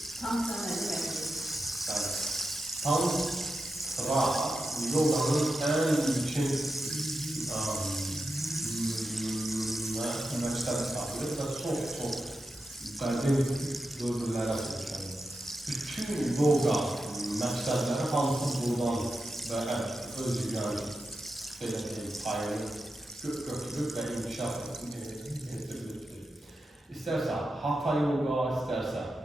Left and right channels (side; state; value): both; normal; correlation 0.90